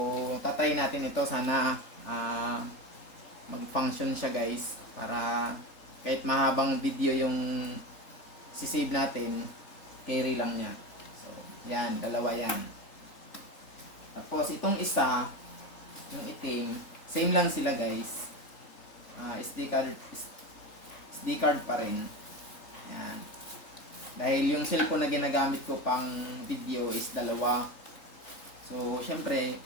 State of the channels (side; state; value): right; late; 3.4 ms